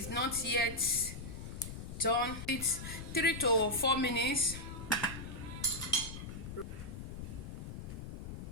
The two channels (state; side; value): noise; left; rumble, 8 dB below the sound